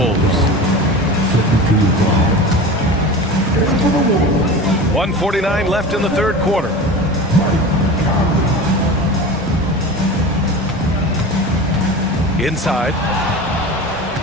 1:49 left in the third quarter. Inside.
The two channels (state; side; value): normal; both; correlation 0.32